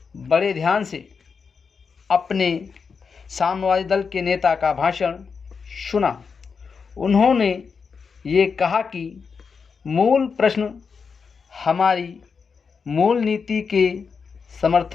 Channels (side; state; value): right; quieter; 5.6 dB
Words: बड़े ध्यान से अपने साम्यवादी दल के नेता का भाषण सुना। उन्होंने ये कहा कि मूल प्रश्न हमारी मूल नीति के